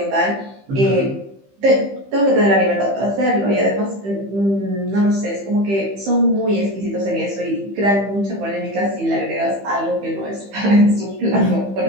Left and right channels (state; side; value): late; left; 15 ms